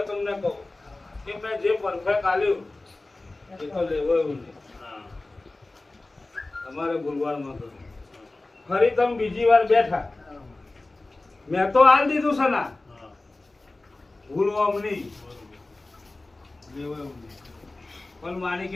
તમને કહું કે મેં જે પરફેક્ટ આલ્યું એ તો લેવો એવું નહીં. તમારે ભૂલવાડમાં તો ફરી તમે બીજી વાર બેઠા, મેં તો આલ દીધું છે ના, ભૂલવા નહીં, લેવો એવું નહીં. પણ મારી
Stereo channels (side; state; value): right; quieter; 3.0 dB